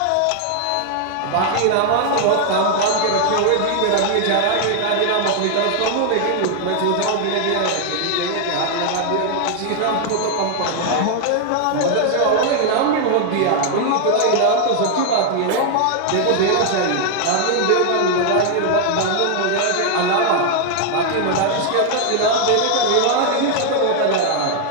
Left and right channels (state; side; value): different; both; correlation 0.00